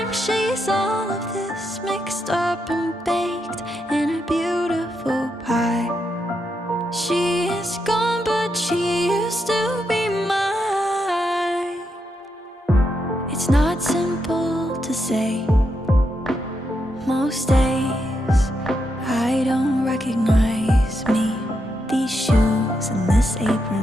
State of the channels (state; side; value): normal; both; correlation 0.82